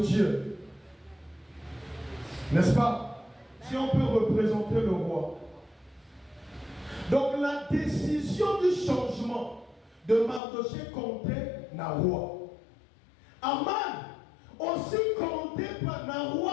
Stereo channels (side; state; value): right; drops out; at 10.4 s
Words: N'est-ce pas? Si on peut représenter le roi. Donc la décision du changement de Mardoché comptait na roi. Aman aussi comptait na roi